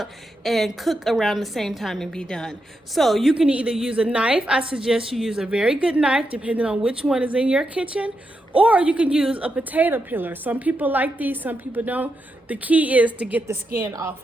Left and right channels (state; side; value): normal; both; correlation 0.85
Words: and cook around the same time and be done. So you can either use a knife. I suggest you use a very good knife depending on which one is in your kitchen, or you can use a potato peeler. Some people like these, some people don't. The key is to get the skin